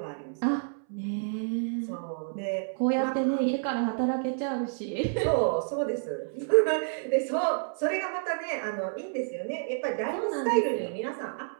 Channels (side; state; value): left; silent; 58 dB below the other